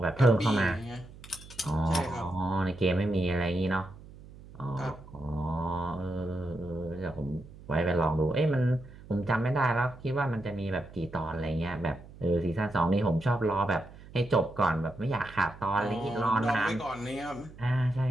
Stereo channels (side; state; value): right; noise; hum, 19 dB below the sound